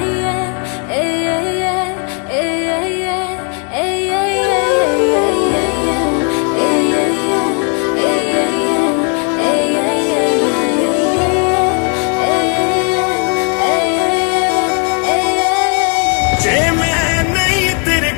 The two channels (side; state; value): right; quieter; 38.8 dB